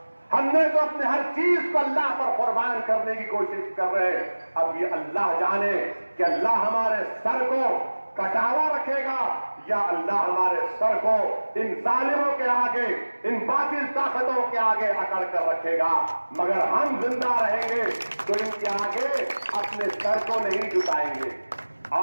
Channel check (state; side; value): inverted; both; correlation -1.00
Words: ہم نے تو اپنے ہر چیز کو اللہ پر قربان کرنے کی کوشش کر رہے ہیں۔ اب یہ اللہ جانے کہ اللہ ہمارے سر کو کٹاوا رکھے گا یا اللہ ہمارے سر کو ان ظالموں کے آگے، ان باطل طاقتوں کے آگے اکڑ کر رکھے گا۔ مگر ہم زندہ رہیں گے تو ان کے آگے اپنے سر کو نہیں جھکائیں گے۔